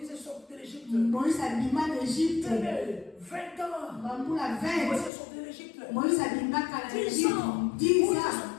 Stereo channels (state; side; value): drops out; right; at 5.1 s